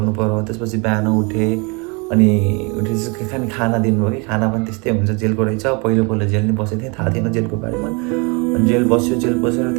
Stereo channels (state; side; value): quieter; left; 30.5 dB